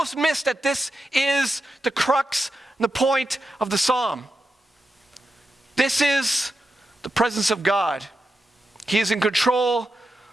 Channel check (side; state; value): both; normal; correlation 0.89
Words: miss that this is the crux and the point of the psalm. This is the presence of God. He is in control